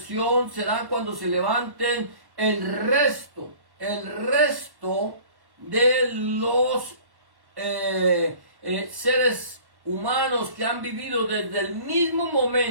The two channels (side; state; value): left; late; 1.1 ms